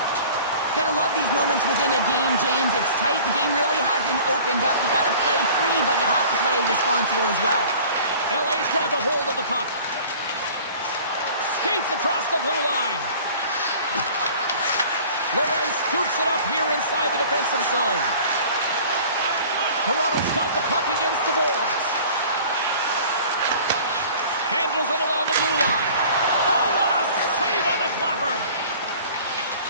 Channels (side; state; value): both; inverted; correlation -0.46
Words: Gotta love these moments within a game, James. It's tight. The game really hasn't opened up. You gotta play free, but you have to play responsible as well. LA's grabbed a hold of the puck. Skates across the blue line. Lorenz scoops it up here inside the defensive zone. Toronto's got the puck against the boards. Handles it along the blue line. Oh, what a save on the clapper.